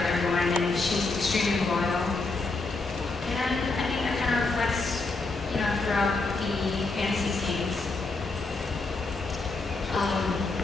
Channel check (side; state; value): right; quieter; 3.6 dB